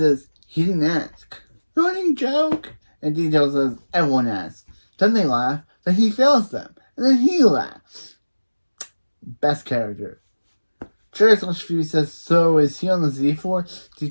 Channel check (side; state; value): both; inverted; correlation -1.00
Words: he didn't ask. Running joke. And Detail says, everyone asks. Then they laugh. Then he fails them. And then he laughs. Best character. Cherry / Phoebe says, so is he on the Z-Force?